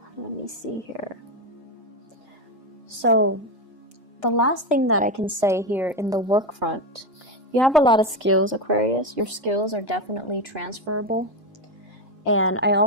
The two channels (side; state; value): both; normal; correlation 0.12